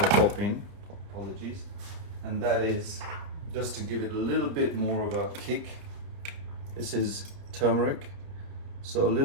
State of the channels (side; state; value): left; late; 30 ms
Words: pop in, apologies, and that is, just to give it a little bit more of a kick, this is turmeric, so a